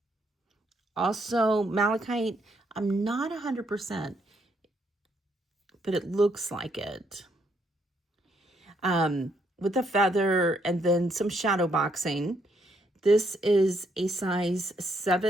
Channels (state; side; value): normal; both; correlation 0.73